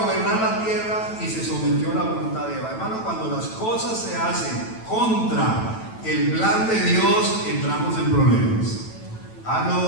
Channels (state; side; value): late; right; 9.1 ms